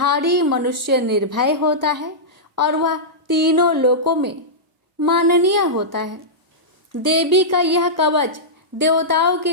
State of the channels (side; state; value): both; normal; correlation -0.13